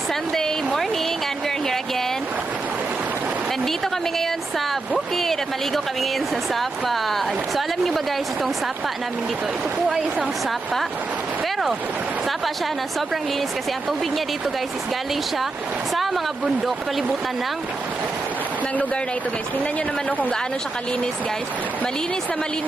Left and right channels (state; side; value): quieter; left; 3.4 dB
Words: Sunday morning and we're here again. Nandito kami ngayon sa bukid at maligo kami ngayon sa sapa. So alam niyo ba guys, itong sapa namin dito, ito po ay isang sapa. Pero sapa siya na sobrang linis kasi ang tubig niya dito guys is galing siya sa mga bundok, palibutan ng lugar na ito guys. Tingnan nyo naman kung gaano siya kalinis guys. Malinis na